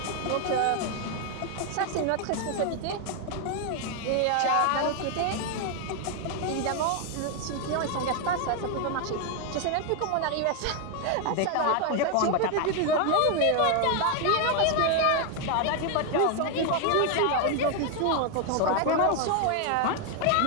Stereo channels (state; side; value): different; both; correlation 0.01